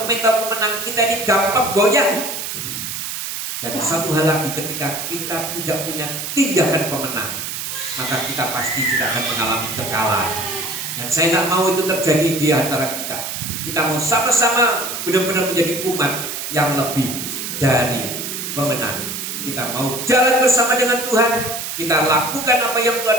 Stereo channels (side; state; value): right; noise; hiss, 5 dB below the sound